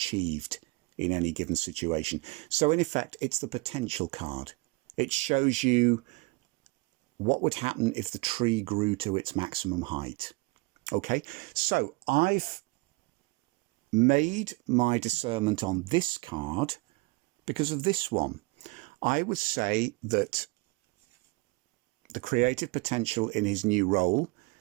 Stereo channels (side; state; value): left; quieter; 26.0 dB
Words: in any given situation. So in effect, it's the potential card. It shows you what would happen if the tree grew to its maximum height. Okay, so I've made my discernment on this card because of this one. I would say that the creative potential in his new role